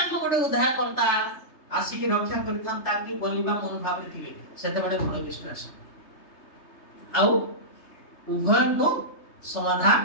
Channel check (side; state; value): right; late; 3.3 ms